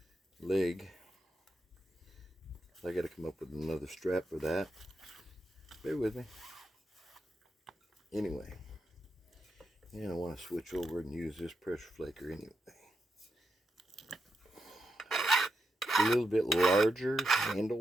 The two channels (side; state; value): both; normal; correlation 0.85